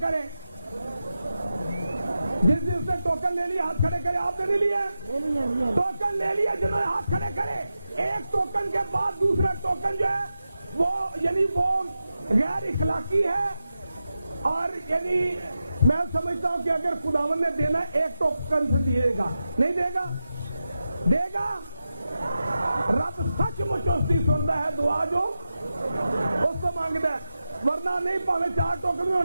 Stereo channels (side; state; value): both; inverted; correlation -0.91